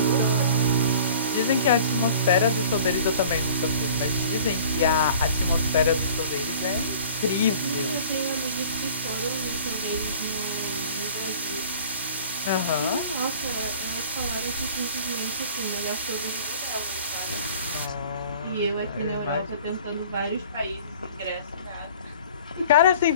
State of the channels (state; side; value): inverted; both; correlation -0.47